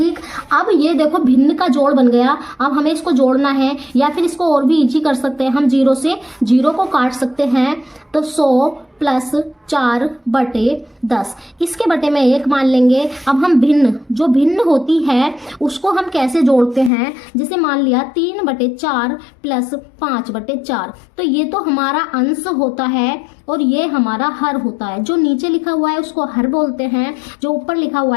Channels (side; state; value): right; drops out; at 16.9 s